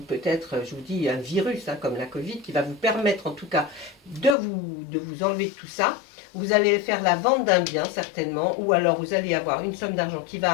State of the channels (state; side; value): drops out; right; at 4.4 s